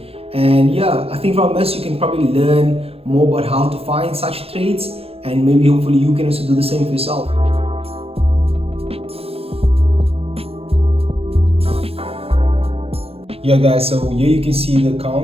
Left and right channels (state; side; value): late; left; 0.28 ms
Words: And yeah, I think from this you can probably learn more about how to find such trades, and maybe hopefully you can also do the same for yourself. Yeah guys, so here you can see the